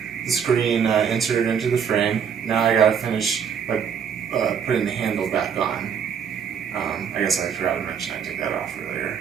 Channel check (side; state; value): left; quieter; 7.4 dB